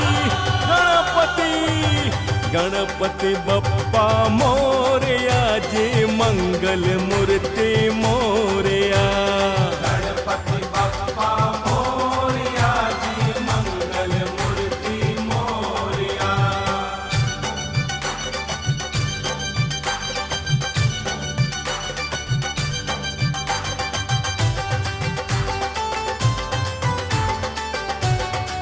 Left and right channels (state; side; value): identical; both; correlation 1.00